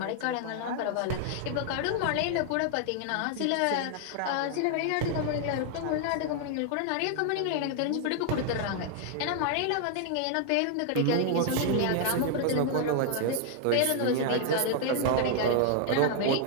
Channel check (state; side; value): different; both; correlation 0.00